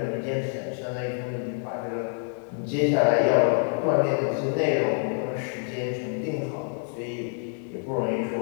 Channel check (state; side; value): silent; right; 60 dB below the other